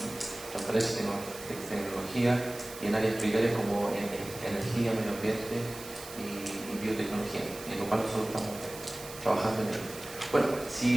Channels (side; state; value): right; noise; hiss, 14 dB below the sound